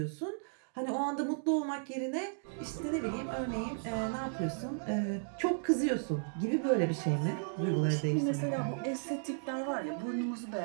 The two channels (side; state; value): left; silent; digital silence